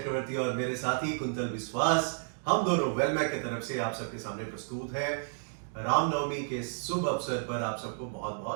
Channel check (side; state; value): left; silent; digital silence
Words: और मेरे साथी कुंतल विश्वास, हम दोनों वेलमैक की तरफ से आप सबके सामने प्रस्तुत हैं। रामनवमी के शुभ अवसर पर आप सबको बहुत